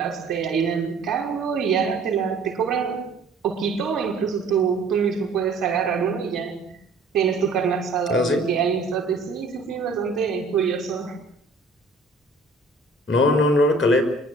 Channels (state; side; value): quieter; left; 3.1 dB